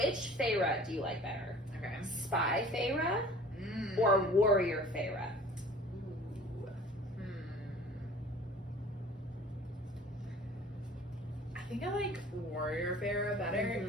Feyre do you like better? Okay. Spy Feyre or Warrior Feyre? Ooh. I think I like Warrior Feyre better.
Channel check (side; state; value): both; normal; correlation 0.47